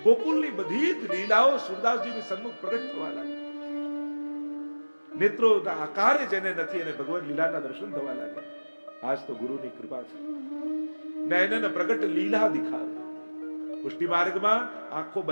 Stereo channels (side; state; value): both; inverted; correlation -1.00